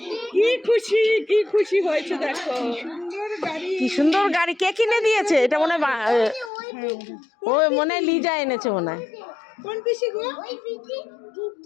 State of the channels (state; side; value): drops out; right; at 6.5 s